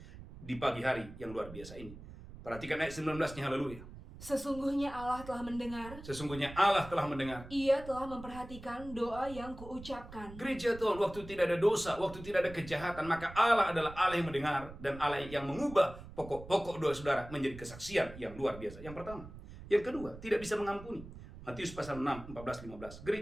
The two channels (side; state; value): right; noise; rumble, 15 dB below the sound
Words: di pagi hari yang luar biasa ini. Perhatikan ayat 19-nya, haleluya. Sesungguhnya Allah telah mendengar, Sesungguhnya Allah telah mendengar. Ia telah memperhatikan doa yang kuucapkan. Gereja Tuhan, waktu tidak ada dosa, waktu tidak ada kejahatan, maka Allah adalah Allah yang mendengar dan Allah yang mengubah pokok-pokok doa saudara menjadi kesaksian yang luar biasa. Yang pertama. Yang kedua, tidak bisa mengampuni. Matius pasal 6, 14-15.